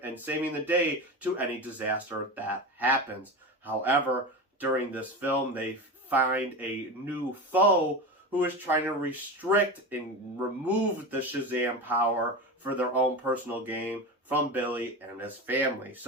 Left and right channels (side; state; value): both; normal; correlation 0.24